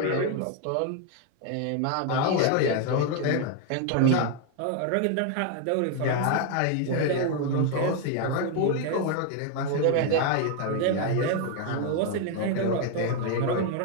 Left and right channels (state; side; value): different; both; correlation 0.01